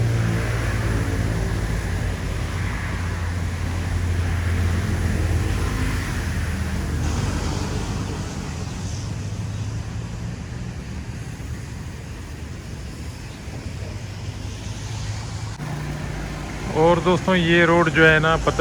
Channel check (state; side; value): identical; both; correlation 1.00